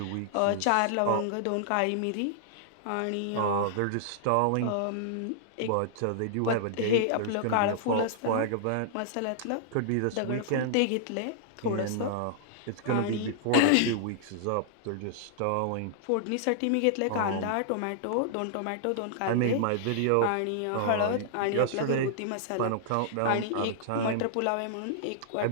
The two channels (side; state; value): both; different; correlation -0.01